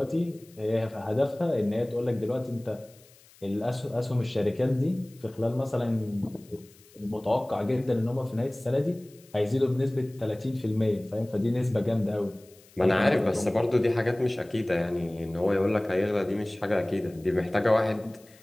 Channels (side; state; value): left; noise; hiss, 27 dB below the sound